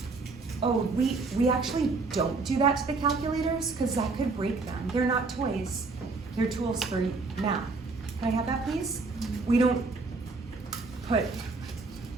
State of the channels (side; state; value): left; quieter; 4.0 dB